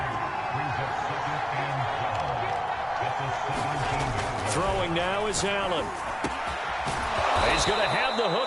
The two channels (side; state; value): both; identical; correlation 1.00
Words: Throwing now is Allen. He's going to have the